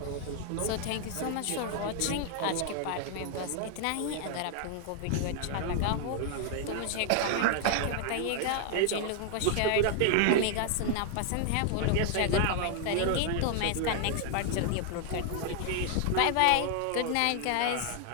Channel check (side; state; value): both; different; correlation 0.00